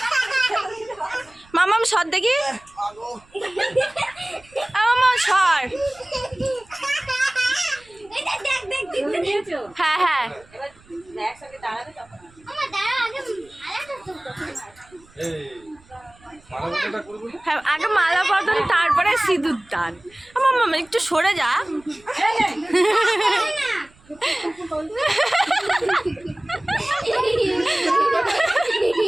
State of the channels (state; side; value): noise; right; rumble, 28 dB below the sound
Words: মাম্মাম সর দেখি, মাম্মাম সর। হ্যাঁ হ্যাঁ হ্যাঁ, আগে মালা বদল তারপরে সিঁদুর দান। আমার মামা একটু সরে যা।